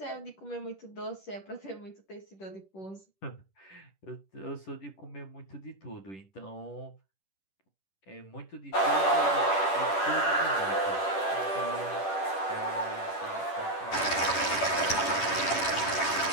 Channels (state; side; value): late; right; 10 ms